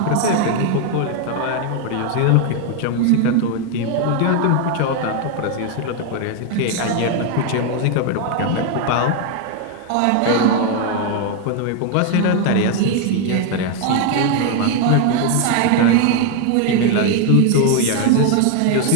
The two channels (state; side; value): different; both; correlation 0.01